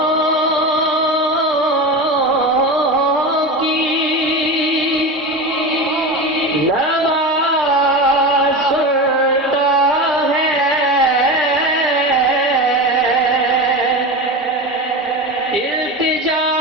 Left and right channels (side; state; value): both; normal; correlation 0.24